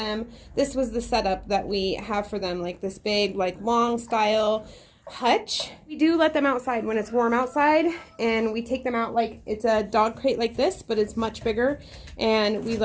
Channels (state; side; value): identical; both; correlation 1.00